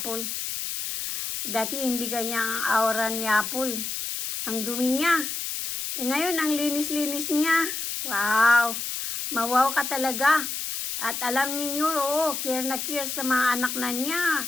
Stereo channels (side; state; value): left; noise; hiss, 4 dB below the sound